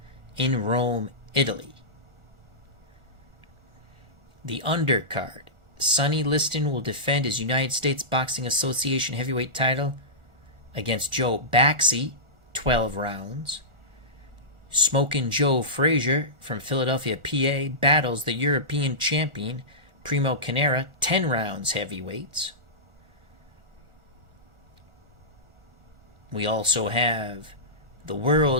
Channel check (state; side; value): late; left; 1.4 ms